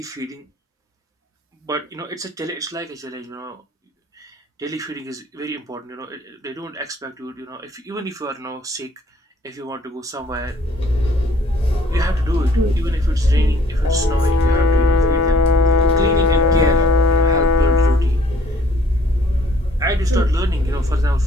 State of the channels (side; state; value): both; normal; correlation 0.58